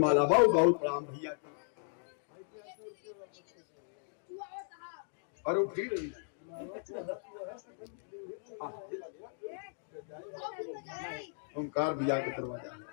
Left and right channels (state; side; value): silent; right; digital silence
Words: बहुत बहुत प्रणाम भैया। और वो फिर ओंकार भैया के दरवाजा